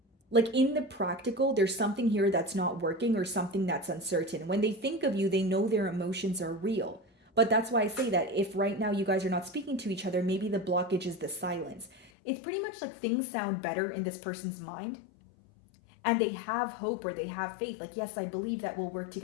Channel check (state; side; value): drops out; right; at 12.1 s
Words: in the practical, there's something here that's not working, or something that's uncertain. When they think of you, they know their emotions are real. But that's why I say that if right now you guys are not speaking to each other, maybe the blockage is the silence. It's pretty much like things sound better in this person's mind, and they have hope, or they have faith. Like, yes, I believe that we'll work